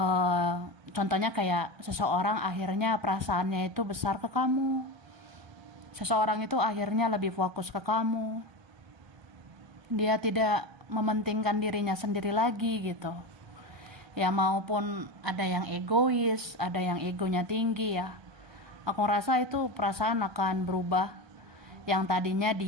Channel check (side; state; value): left; late; 1.2 ms